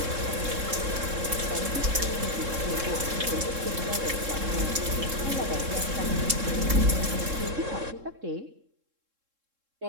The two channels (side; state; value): left; late; 3.7 ms